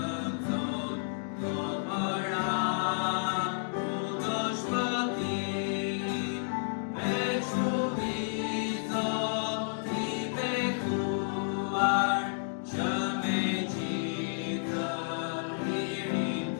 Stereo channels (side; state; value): right; silent; digital silence